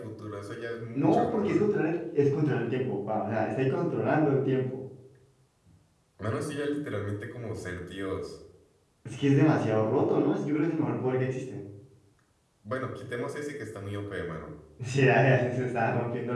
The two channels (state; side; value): identical; both; correlation 1.00